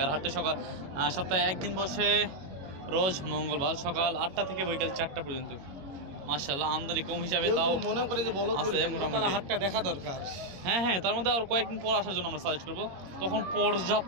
আর হাটটা সপ্তাহে একদিন বসে, রোজ মঙ্গলবার সকাল 8টা থেকে বৈকাল 4টা পর্যন্ত। মাশাআল্লাহ আমদানি কম হিসাবে তাও মনে করে যে বলদ আছে মোটামুটি। হাটটা দেখা দরকার। হ্যাঁ হ্যাঁ, তার মধ্যে আর কয়েকদিন পর আসার জন্য আমরা সাজেস্ট করবো, তখন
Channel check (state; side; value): late; left; 21 ms